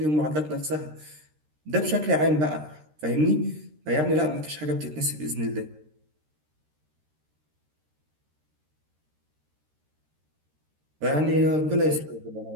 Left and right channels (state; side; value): late; left; 13 ms